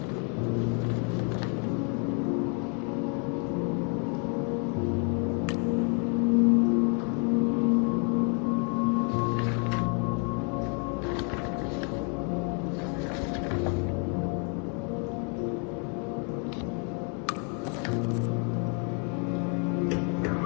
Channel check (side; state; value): right; quieter; 38.6 dB